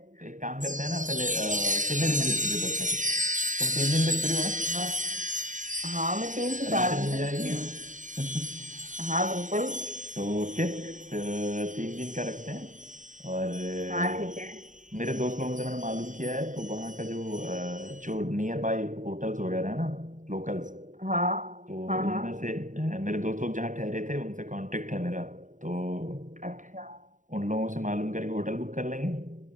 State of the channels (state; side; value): late; left; 0.37 ms